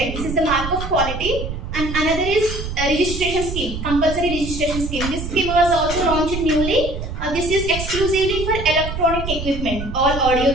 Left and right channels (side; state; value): right; noise; rumble, 6 dB below the sound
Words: This is the mark of quality. And another is a registration scheme, compulsory registration scheme. This scheme was also launched newly. This is exclusively for electronic equipment, all audio,